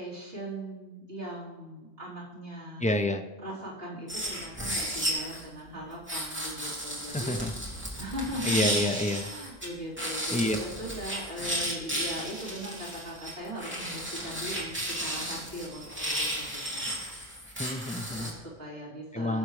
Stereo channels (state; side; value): normal; both; correlation 0.31